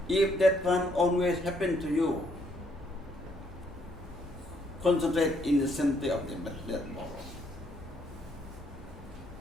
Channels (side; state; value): both; normal; correlation 0.70